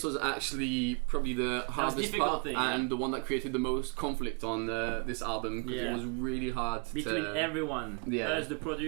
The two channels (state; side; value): quieter; left; 33.5 dB